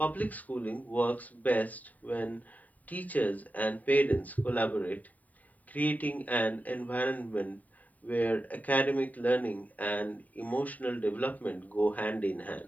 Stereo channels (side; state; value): right; late; 0.074 ms